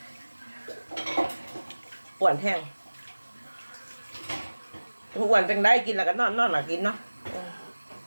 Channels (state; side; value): inverted; both; correlation -1.00